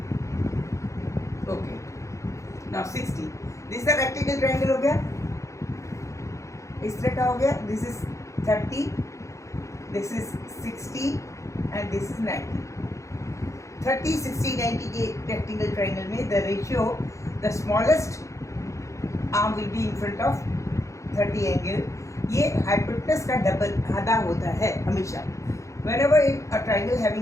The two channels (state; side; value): late; right; 0.15 ms